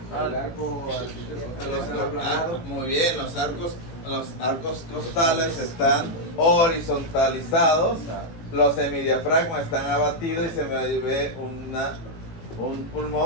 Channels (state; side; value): late; right; 18 ms